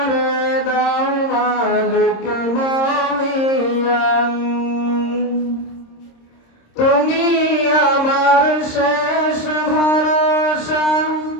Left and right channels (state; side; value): late; right; 26 ms